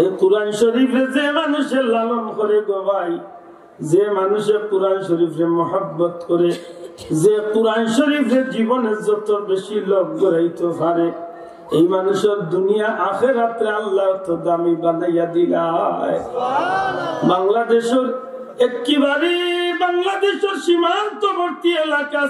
কুরআন শরীফে যে মানুষের লালন করে গো ভাই, যে মানুষের কুরআন শরীফে মহব্বত করে, যে কুরআন শরীফের জীবনে যত বেশি লোক গড়াইতে পারে, এই মানুষের দুনিয়া আখিরাতে আল্লাহ তো দামি বানাইয়া দিলায়। বাংলাদেশের একেবারে বাংলাদেশের সীমান্তবর্তী এলাকা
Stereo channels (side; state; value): both; identical; correlation 1.00